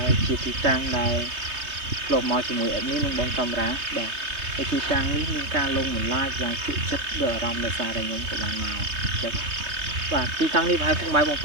ែលជាទីតាំងដែលធ្លាប់មកជាមួយ admin និងបងកាមេរ៉ាបាទហើយទីតាំងនេះមានការលងបន្លាចយ៉ាងជក់ចិត្តដល់អារម្មណ៍ដោយសារតែខ្ញុំក៏បានមកបាទទីតាំងនេះប្រហែលពុកម៉ែបងប្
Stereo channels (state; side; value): late; left; 3.2 ms